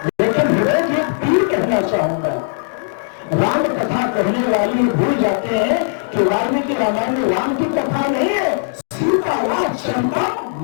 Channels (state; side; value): silent; right; digital silence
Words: लेकिन हृदय की एक पीर कहना चाहूंगा। राम कथा कहने वाले भूल जाते हैं कि वाल्मीकि रामायण में राम की कथा नहीं है, सीता राज चंपा